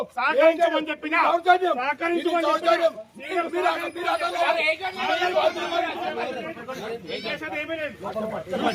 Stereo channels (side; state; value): both; identical; correlation 1.00